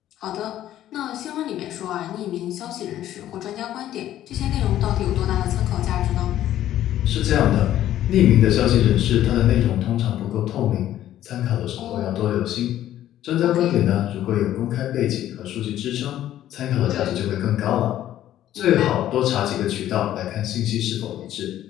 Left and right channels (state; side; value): quieter; right; 12.5 dB